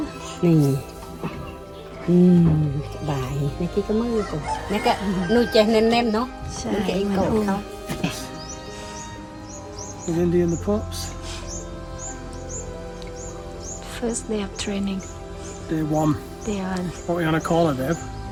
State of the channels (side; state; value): both; identical; correlation 1.00